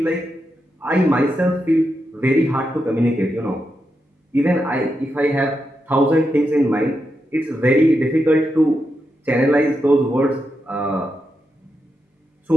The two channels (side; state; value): both; normal; correlation 0.86